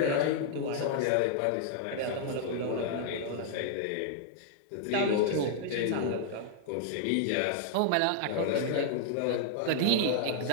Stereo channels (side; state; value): both; different; correlation -0.01